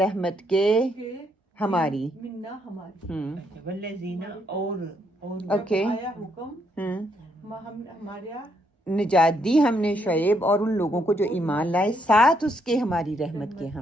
کے ہماری منا ہماری. والذین اور اوکے آیا حکم ہمارے نجات دی ہم نے شعیب اور ان لوگوں کو جو ایمان لائے ساتھ اس کے ہماری رحمت کے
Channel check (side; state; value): both; normal; correlation 0.74